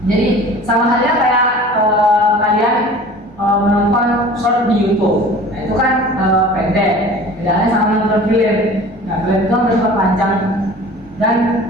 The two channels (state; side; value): normal; both; correlation 0.43